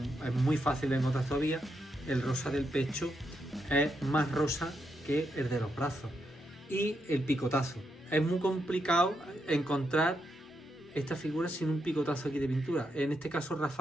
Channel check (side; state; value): both; normal; correlation 0.82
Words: es muy fácil de encontrar todavía, el rosa del pecho es más rosa que el de los brazos. Y el picotazo. Es muy complicado encontrar esta figura sin un picotazo aquí de pintura. En este caso